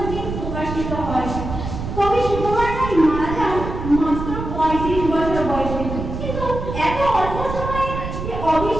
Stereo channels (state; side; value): noise; right; rumble, 6 dB below the sound